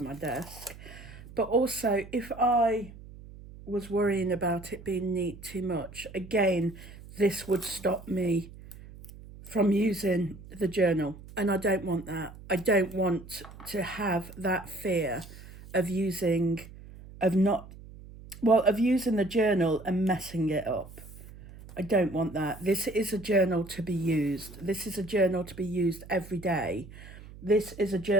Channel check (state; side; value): noise; right; hum, 17 dB below the sound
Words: desk, but also if I was worrying about it being neat too much, again, this would stop me from using the journal, and I don't want that. I don't want to have that fear of using the journal and messing it up. I don't want that. This is a journal to be used. This is a journal to be used every day. This is a